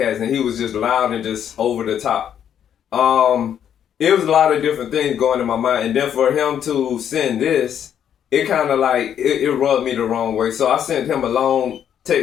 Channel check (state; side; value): quieter; right; 9.3 dB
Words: and he was just loud and just over the top. It was a lot of different things going in my mind. And then for him to send this, it kind of like, it rubbed me the wrong way. So I sent him a long